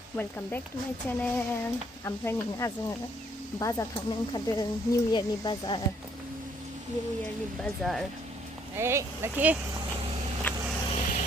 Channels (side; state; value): both; normal; correlation 0.66